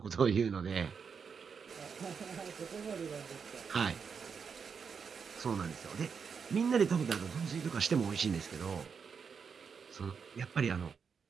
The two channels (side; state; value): left; quieter; 6.1 dB